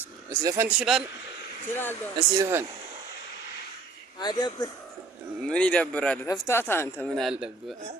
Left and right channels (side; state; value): left; quieter; 4.0 dB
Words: አብ። እስኪ ዘፈን ትችላለህ? እችላለሁ። እስኪ ዘፈን። አይደብር። ምን ይደብራል? ተፍታታ አንተ ምን አለብህ?